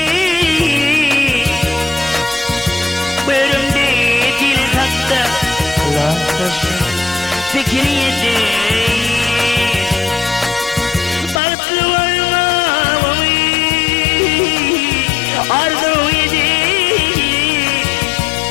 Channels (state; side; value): drops out; right; at 11.4 s